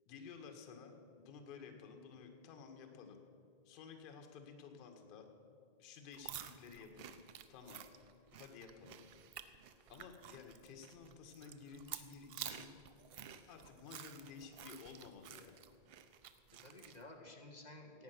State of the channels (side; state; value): right; late; 1.5 ms